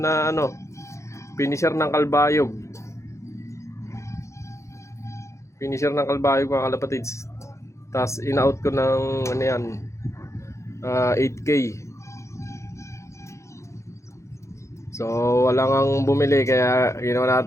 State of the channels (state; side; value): late; right; 0.14 ms